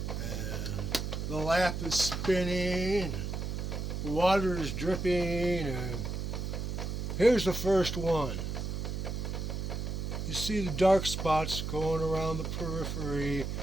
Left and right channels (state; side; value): noise; right; hum, 3 dB below the sound